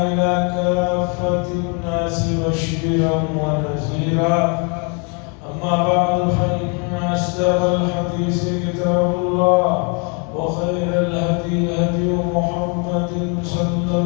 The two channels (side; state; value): right; quieter; 36.1 dB